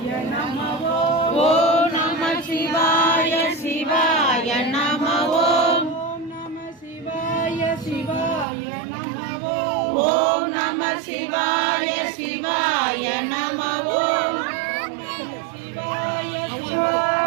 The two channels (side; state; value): left; drops out; at 8.5 s